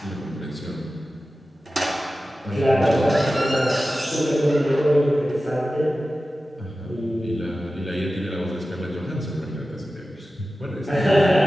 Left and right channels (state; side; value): normal; both; correlation 0.94